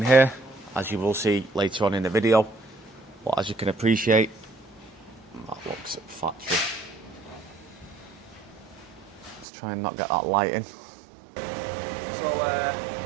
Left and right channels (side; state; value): left; drops out; at 9.5 s